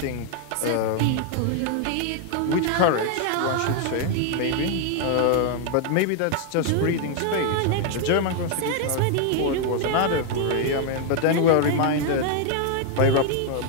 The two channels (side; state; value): both; different; correlation 0.00